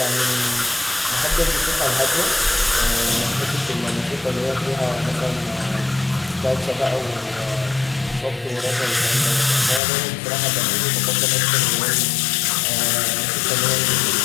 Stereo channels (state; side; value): drops out; right; at 9.8 s